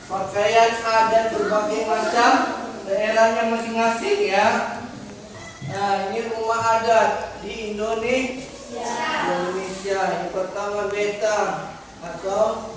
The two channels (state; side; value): identical; both; correlation 1.00